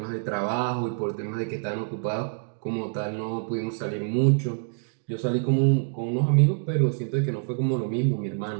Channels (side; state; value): left; silent; digital silence